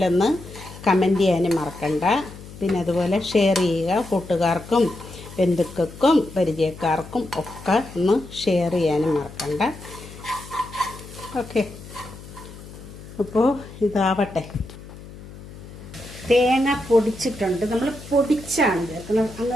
കമൻറ്റ് ചെയ്യാനും മറക്കണ്ട. പിന്നെ അതുപോലെ ഷെയർ ചെയ്യുക, കൂട്ടുകാർക്കും ബന്ധുക്കൾക്കും പരിചയക്കാർക്കും ഒക്കെ ഒന്ന് ഷെയർ ചെയ്യാനും മറക്കണ്ട. ഓക്കെ, അപ്പോൾ ഇതാവട്ടെ. തേങ്ങ പൊടിച്ചിട്ടുണ്ട്. നമ്മൾ പൊടിച്ചാണ് ചേർക്കുന്നത്,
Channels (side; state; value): left; noise; hum, 16 dB below the sound